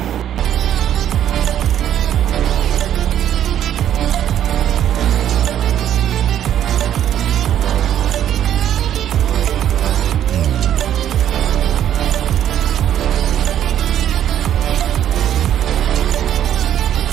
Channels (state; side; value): quieter; left; 10.7 dB